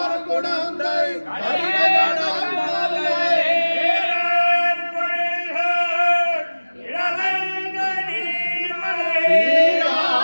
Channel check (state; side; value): inverted; both; correlation -1.00